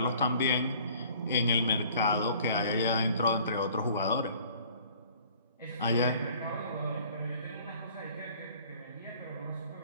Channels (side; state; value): both; inverted; correlation -0.52